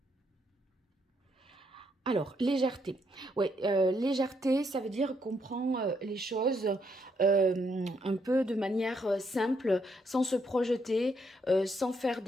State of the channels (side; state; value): both; normal; correlation 0.75